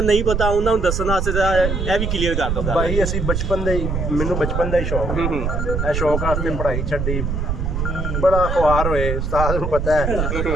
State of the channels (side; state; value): right; noise; rumble, 1 dB below the sound